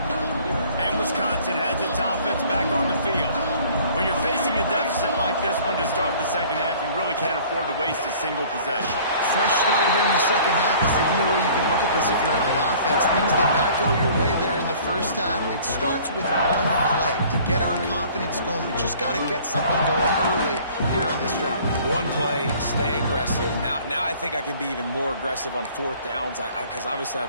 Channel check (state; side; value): inverted; both; correlation -0.51